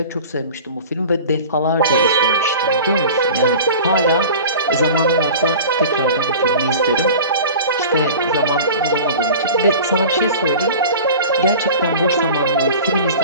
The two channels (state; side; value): inverted; both; correlation -0.38